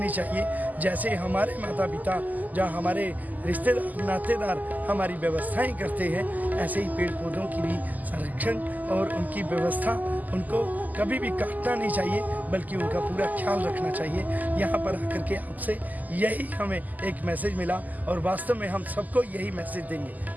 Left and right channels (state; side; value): late; left; 0.081 ms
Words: चाहिए। जैसे हमारे माता पिता, जहाँ हमारे रिश्तेदार, नातेदार हमारी व्यवस्थाएं करते हैं, ऐसे ही पेड़ पौधों की भी संरक्षण और उनकी व्यवस्था, उनको कभी भी काटना नहीं चाहिए बल्कि उनका पूरा ख्याल रखना चाहिए। यहाँ पर आकर के आपसे यही हमें एक मैसेज मिला और वास्तव में हम सबको यही मैसेज देंगे।